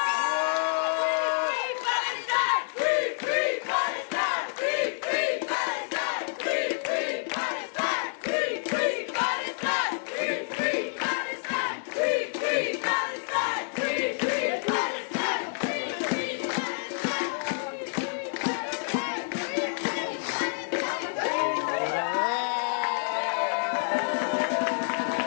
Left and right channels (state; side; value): silent; right; digital silence